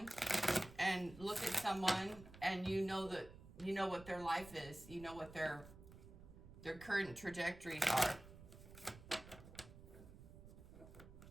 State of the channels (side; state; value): right; noise; rumble, 17 dB below the sound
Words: and look at someone and you know what their life is. You know what their current trajectories are.